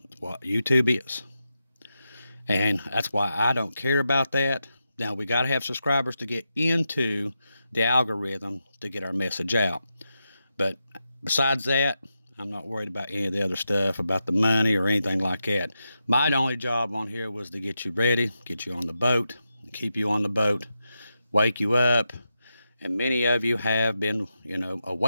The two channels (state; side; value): inverted; both; correlation -0.88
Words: It's what YouTube is. And that's why I don't care about that. Now, we got to have subscribers to get into the algorithm to get our message out. But besides that, I'm not worried about any of the other stuff, about the money or anything like that. My only job on here was to get you ready, get you on the boat, keep you on the boat, wake you up. And many of you have been,